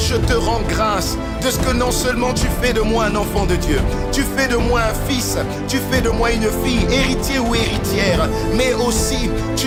te rends grâce de ce que non seulement tu fais de moi un enfant de Dieu, tu fais de moi un fils, tu fais de moi une fille, héritier ou héritière, mais aussi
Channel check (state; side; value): identical; both; correlation 1.00